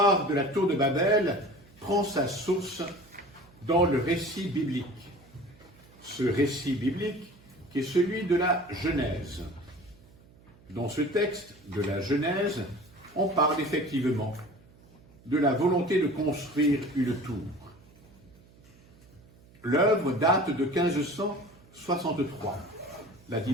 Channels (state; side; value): noise; right; hum, 26 dB below the sound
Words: de la tour de Babel prend sa source dans le récit biblique. Ce récit biblique qui est celui de la Genèse. Dans ce texte de la Genèse, on parle effectivement de la volonté de construire une tour. L'œuvre date de 1563. La